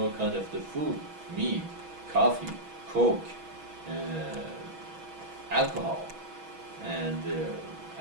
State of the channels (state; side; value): late; left; 6.2 ms